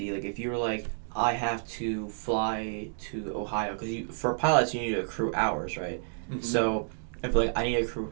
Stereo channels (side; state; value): left; silent; digital silence